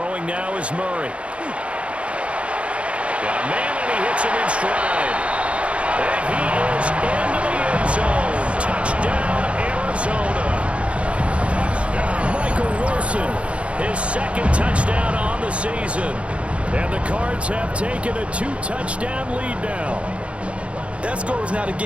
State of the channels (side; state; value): left; late; 0.061 ms